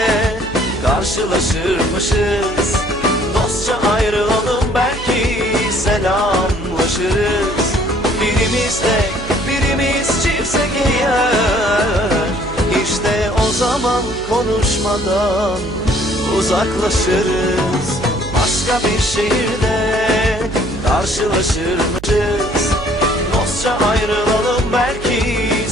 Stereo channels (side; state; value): right; noise; hum, 13 dB below the sound